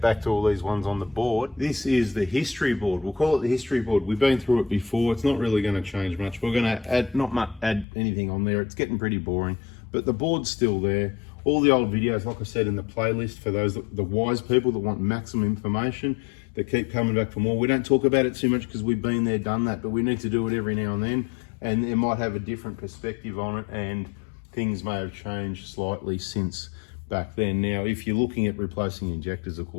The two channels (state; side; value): drops out; right; at 7.9 s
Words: back to all these ones on the board. This is the history board. We'll call it the history board. We've been through it before. It's not really going to change much. We're going to add anything on there. It's getting pretty boring, but the board's still there. All the old videos, like I said, in the playlist for those, the wise people that want maximum information, that keep coming back for more. We don't talk about it too much because we've been there, done that, but we need to do it every now and then, and it might have a different perspective on it, and things may have changed slightly since back then. Now, if you're looking at replacing injectors, of